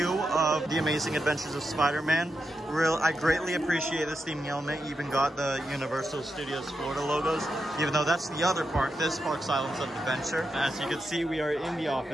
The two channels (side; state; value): both; normal; correlation 0.87